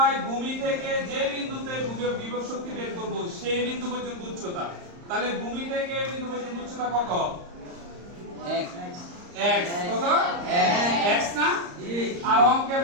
ভূমি থেকে যে বিন্দুতে বিভব শক্তি বের করব সেই বিন্দু পর্যন্ত উচ্চতা। তাহলে ভূমি থেকে এই বিন্দু পর্যন্ত উচ্চতা কত? x। কত? x না? আর অঙ্কের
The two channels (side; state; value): left; late; 34 ms